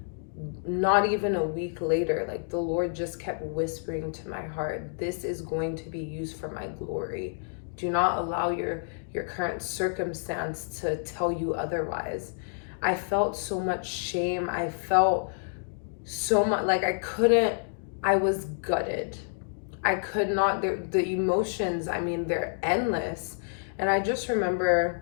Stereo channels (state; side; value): silent; right; digital silence